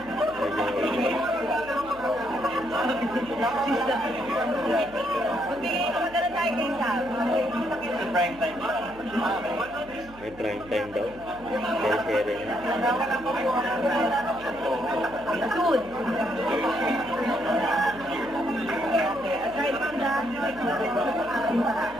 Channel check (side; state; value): right; noise; hum, 20 dB below the sound